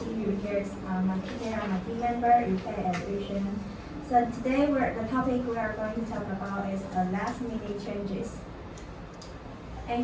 Here's my team member, Yufei and Yushen. So today the topic we are going to talk about is last minute changes.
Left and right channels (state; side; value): identical; both; correlation 1.00